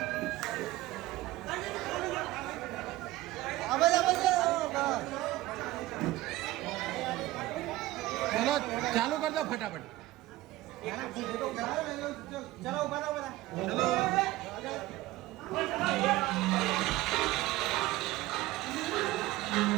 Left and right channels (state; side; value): quieter; left; 17.4 dB